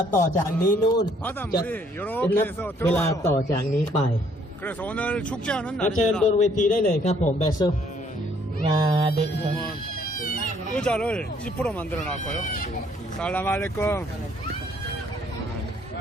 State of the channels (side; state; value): both; normal; correlation 0.64